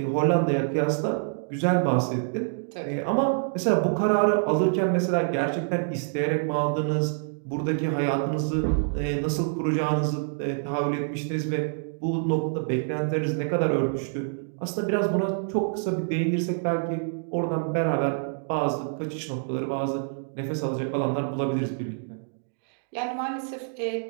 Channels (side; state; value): left; silent; digital silence